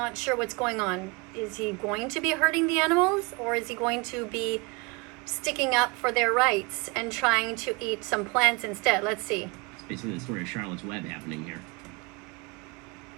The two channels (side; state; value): left; quieter; 27.5 dB